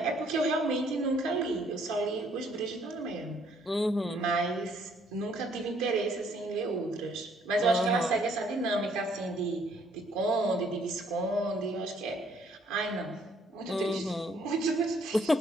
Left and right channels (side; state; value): both; normal; correlation 0.65